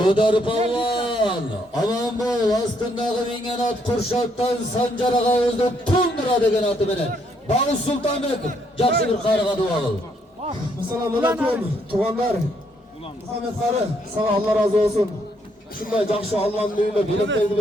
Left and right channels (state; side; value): normal; both; correlation 0.72